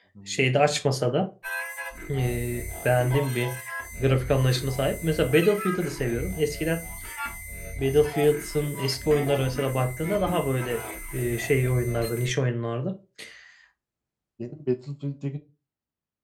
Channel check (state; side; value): identical; both; correlation 1.00